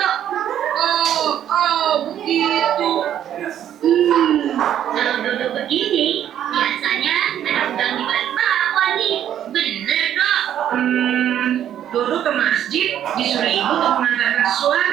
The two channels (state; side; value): quieter; left; 10.5 dB